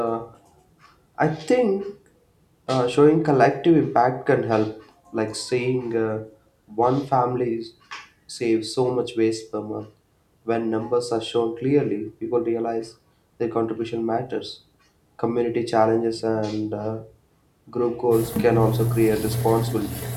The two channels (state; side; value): identical; both; correlation 1.00